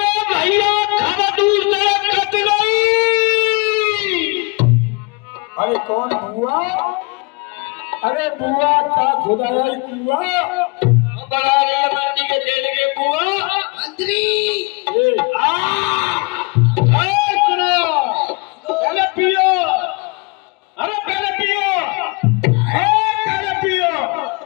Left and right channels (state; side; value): quieter; right; 29.4 dB